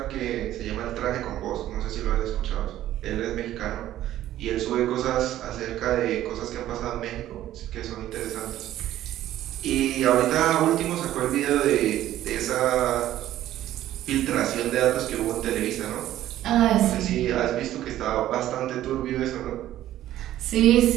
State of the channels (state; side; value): quieter; left; 13.2 dB